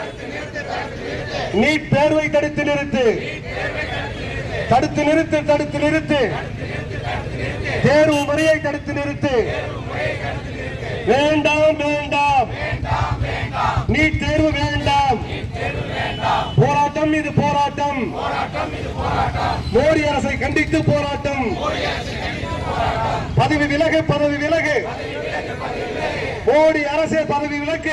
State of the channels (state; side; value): identical; both; correlation 1.00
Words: நீட் தேர்வை தடுத்து நிறுத்து. தடுத்து நிறுத்து, தடுத்து நிறுத்து. தேர்வு முறையை தடுத்து நிறுத்து. வேண்டாம் வேண்டாம், நீட் தேர்வு வேண்டாம். போராட்டம் இது போராட்டம். மோடி அரசை கண்டித்து போராட்டம். பதவி விலகு, பதவி விலகு. மோடி அரசே பதவி